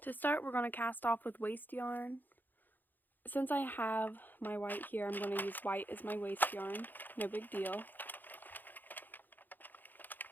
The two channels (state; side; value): late; right; 0.087 ms